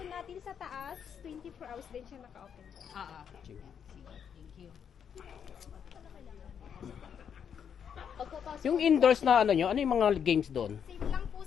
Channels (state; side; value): quieter; right; 7.8 dB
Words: natin sa taas, 24 hours din siya naka-open po. Sige. Thank you. Pagkapasok. Yung indoors na ano nyo, ano yung mga games doon? Same lang po